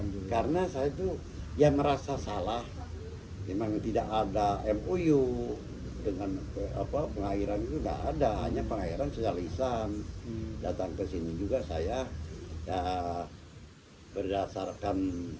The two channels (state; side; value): identical; both; correlation 1.00